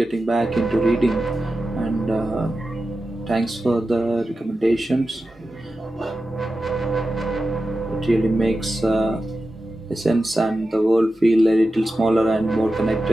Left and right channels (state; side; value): normal; both; correlation 0.92